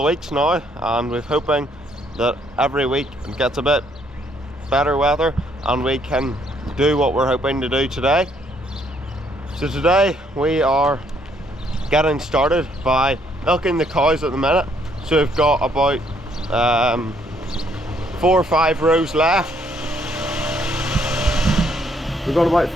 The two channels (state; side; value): normal; both; correlation 0.68